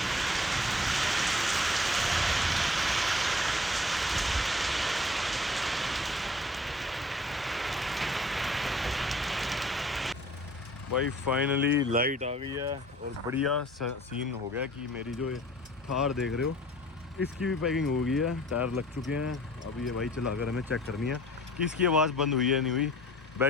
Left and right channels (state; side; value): normal; both; correlation 0.51